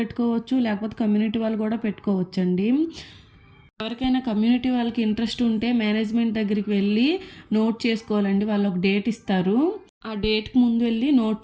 లేకపోతే కమ్యూనిటీ వాళ్ళు కూడా పెట్టుకోవచ్చండి. ఎవరికైనా కమ్యూనిటీ వాళ్ళకి ఇంట్రెస్ట్ ఉంటే మేనేజ్మెంట్ దగ్గరికి వెళ్ళి నోట్ చేసుకోవాలండి. వాళ్ళు ఒక డేట్ ఇస్తారు. ఆ డేట్కి ముందు వెళ్ళి నోట్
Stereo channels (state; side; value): identical; both; correlation 1.00